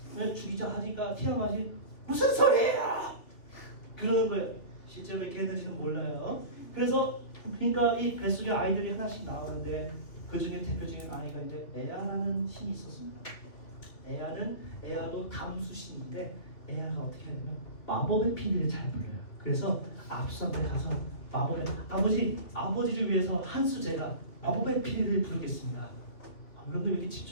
죽이자 하니까 티아마스이 무슨 소리야! 그러는 거예요. 실제로 이렇게 했는지는 몰라요. 그래서 그러니까 이 뱃속에 아이들이 하나씩 나오는데 그 중에 대표적인 아이가 이제 에아라는 신이 있었습니다. 에아도 담수신인데 에아가 어떻게 하냐면 마법의 피리를 잘 불어요. 그래서 압수한테 가서 아버지를 위해서 한수 제가 마법의 피리를 부르겠습니다. 여러분들 왜 이렇게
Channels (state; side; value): late; right; 2.8 ms